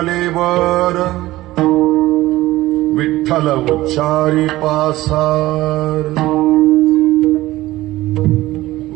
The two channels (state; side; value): quieter; left; 17.2 dB